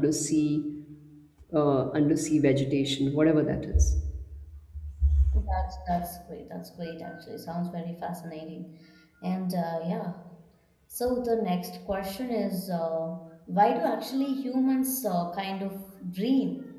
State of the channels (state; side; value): identical; both; correlation 1.00